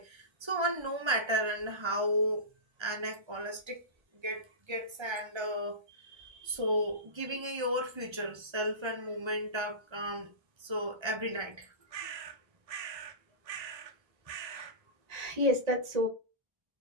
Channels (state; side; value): late; left; 1.3 ms